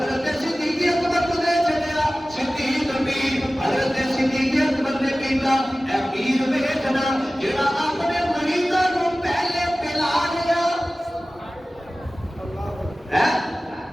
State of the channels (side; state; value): both; normal; correlation 0.97